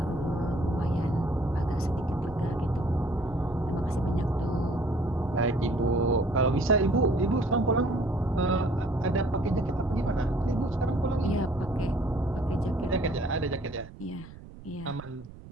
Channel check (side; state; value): right; noise; rumble, 17 dB below the sound